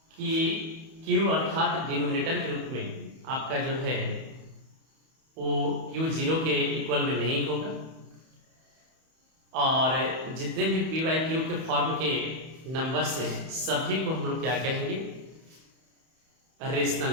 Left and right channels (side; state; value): left; late; 31 ms